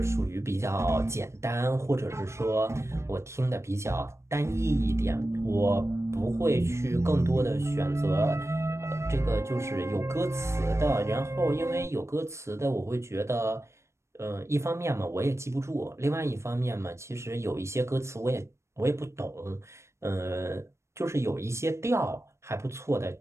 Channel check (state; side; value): late; left; 0.13 ms